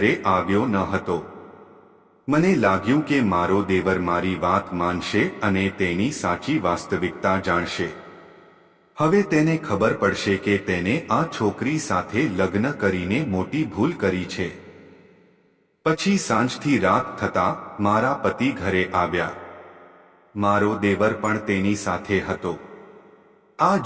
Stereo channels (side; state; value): both; identical; correlation 1.00